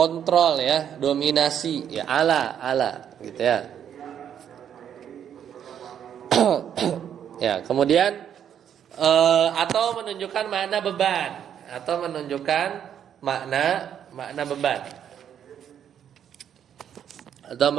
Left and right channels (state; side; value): quieter; left; 9.2 dB